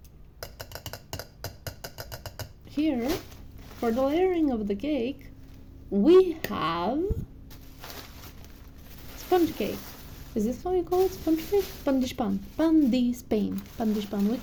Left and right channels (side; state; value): both; identical; correlation 1.00